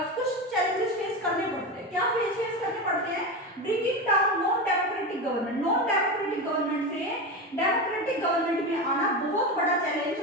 कुछ चैलेंजेस फेस करने पड़ते हैं। क्या फेस करने पड़ते हैं? Bringing down non democratic government, non democratic government से डेमोक्रेटिक गवर्नमेंट में आना बहुत बड़ा चैलेंज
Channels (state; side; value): normal; both; correlation 0.20